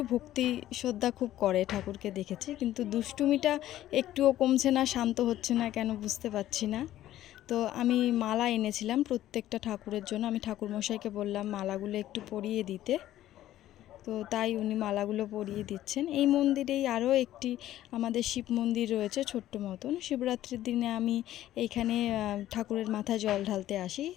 ভক্তি শ্রদ্ধা খুব করে, ঠাকুরকে দেখেছি। কিন্তু দুষ্টুমিটা একটুও কমছে না, শান্ত হচ্ছে না কেন বুঝতে পারছি না। তো আমি মালা এনেছিলাম প্রত্যেকটা ঠাকুরের জন্য। আমি ঠাকুরমশাইকে বললাম মালাগুলো একটু পরিয়ে দিতে। তো তাই উনি মালাগুলো পরিয়ে দিচ্ছেন। এই মন্দিরেই আরও একটি আমাদের শিব মন্দির রয়েছে, ছোট্ট মতন। শিবরাত্রির দিনে আমি এইখানে ঠাকুরের মাথায় জল ঢালতে আসি।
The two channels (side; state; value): right; quieter; 13.5 dB